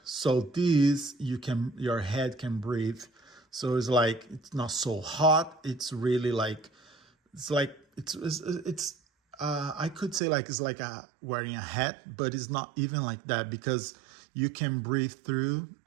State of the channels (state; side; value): drops out; left; at 10.2 s